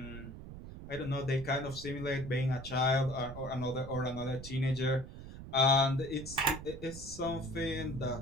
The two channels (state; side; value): noise; right; rumble, 12 dB below the sound